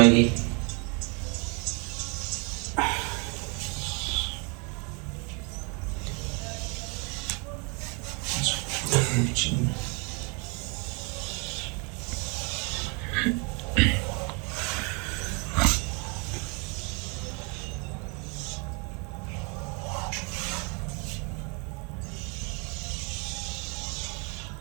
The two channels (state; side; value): quieter; left; 33.0 dB